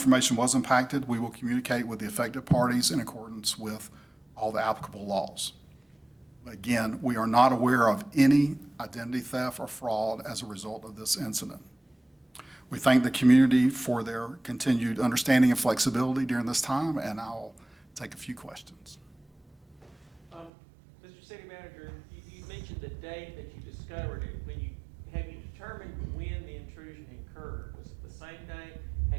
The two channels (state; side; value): drops out; left; at 20.5 s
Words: was impacted, we will communicate with the affected parties in accordance with all the applicable laws. Again, we are not aware of any identity theft or fraud as a result of this incident. We thank the community for their continued understanding and flexibility during this time, and I'll take a few questions. Mr. City Manager, you mentioned the date that you discovered it. Have you determined when the intrusion occurred? Was it the same day?